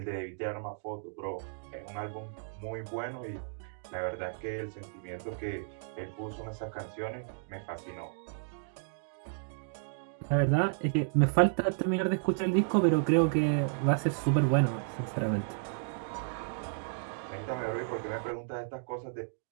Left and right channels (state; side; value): silent; left; digital silence